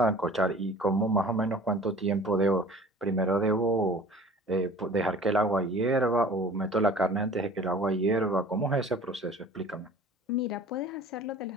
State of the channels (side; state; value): both; normal; correlation 0.45